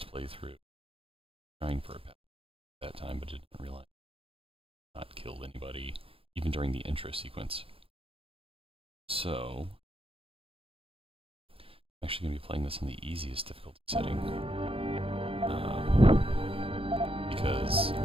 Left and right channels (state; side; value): late; left; 0.27 ms